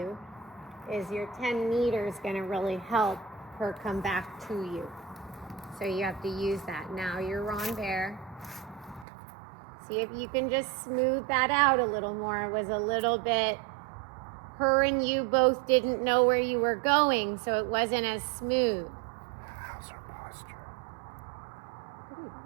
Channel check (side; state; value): left; drops out; at 9.1 s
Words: is your 10 meters going to really help her come back to you. So you have to use that. Now your renvers. See if you can just smooth that out a little more. It was a little bit, her and you both didn't know where you were going, so it wasn't as smooth. How's her posture? Pretty